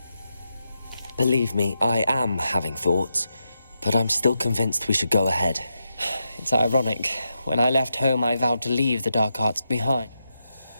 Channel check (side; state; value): both; inverted; correlation -0.86